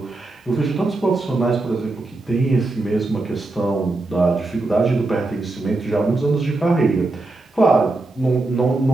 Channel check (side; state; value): left; quieter; 3.1 dB